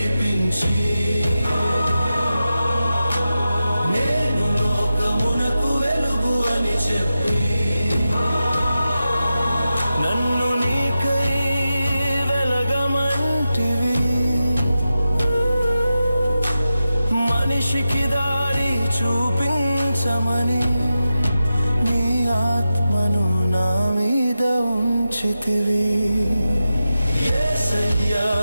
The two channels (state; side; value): inverted; both; correlation -0.91